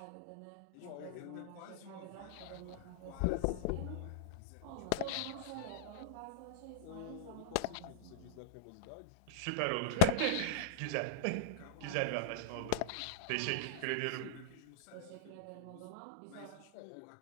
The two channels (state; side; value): different; both; correlation -0.01